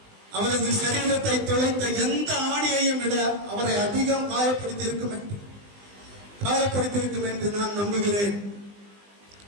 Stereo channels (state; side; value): late; left; 20 ms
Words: அவரது சரீரத்தை தொலைத்த எந்த ஆணியையும் விட அவரை அதிகம் காயப்படுத்தியிருக்கும் என்று நான் நம்புகிறேன்.